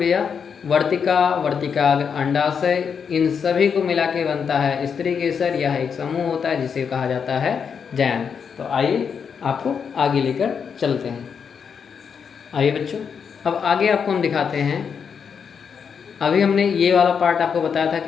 वर्तिका, वर्तिकाग्र, अंडाशय, इन सभी को मिला के बनता है स्त्री केसर। यह एक समूह होता है जिसे कहा जाता है जयांग। तो आइए आपको आगे लेकर चलते हैं। आइए बच्चों, अब आगे आपको हम दिखाते हैं। अभी हमने ये वाला पार्ट आपको बताया था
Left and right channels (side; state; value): right; quieter; 6.7 dB